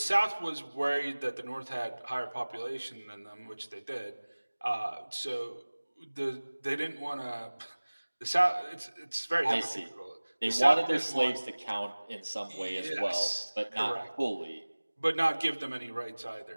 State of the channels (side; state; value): both; inverted; correlation -1.00